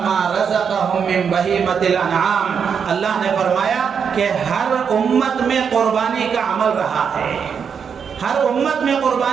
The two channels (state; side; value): quieter; left; 6.8 dB